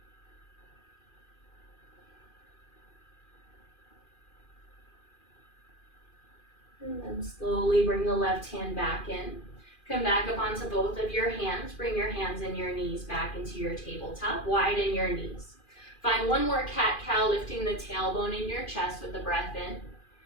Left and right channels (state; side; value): late; right; 2.4 ms